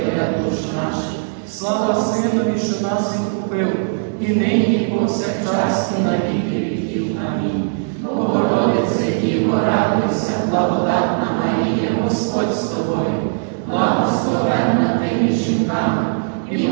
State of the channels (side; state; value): left; silent; digital silence